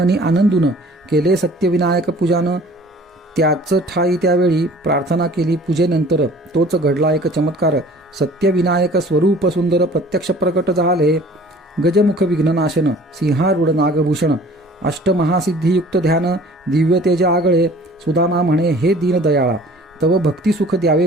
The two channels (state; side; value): normal; both; correlation 0.49